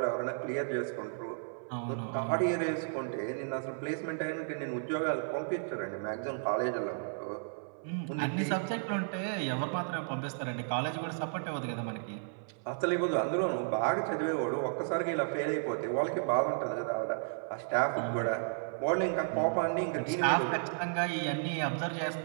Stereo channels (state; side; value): silent; left; 56 dB below the other